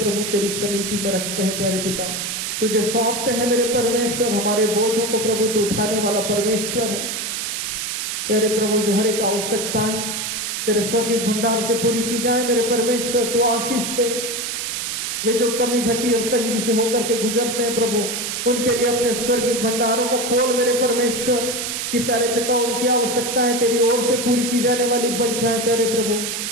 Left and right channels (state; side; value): noise; right; hiss, 3 dB below the sound